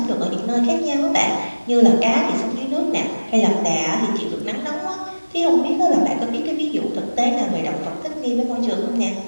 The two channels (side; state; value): both; inverted; correlation -1.00